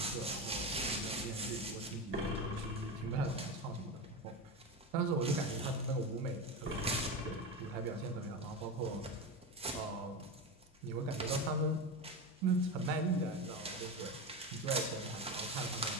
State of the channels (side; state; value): both; normal; correlation 0.20